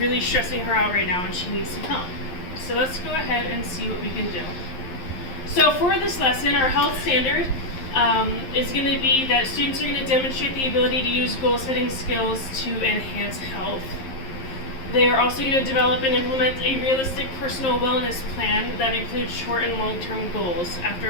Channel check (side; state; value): right; late; 11 ms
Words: stressing her out right now, and she needs some help. So let's go ahead and see what we can do. So for this lesson, our health standard is going to be that students are going to demonstrate the ability to use goal-setting skills to enhance health. They are also going to develop and implement a realistic personal wellness plan that includes short and long-term goals.